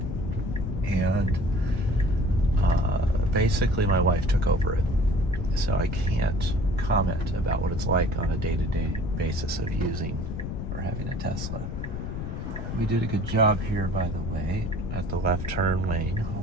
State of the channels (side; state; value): left; noise; rumble, 5 dB below the sound